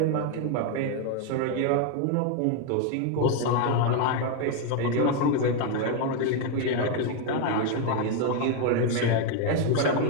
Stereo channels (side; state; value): both; different; correlation 0.01